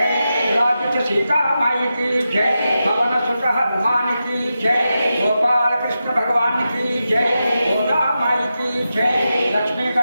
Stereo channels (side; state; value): both; inverted; correlation -0.90